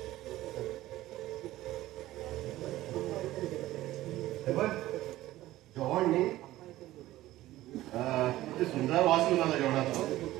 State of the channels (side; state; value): left; quieter; 15.8 dB